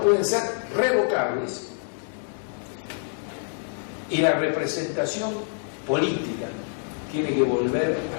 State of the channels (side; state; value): right; silent; digital silence